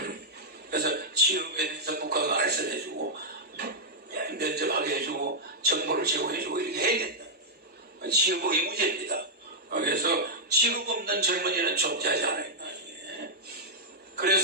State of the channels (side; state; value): both; normal; correlation -0.06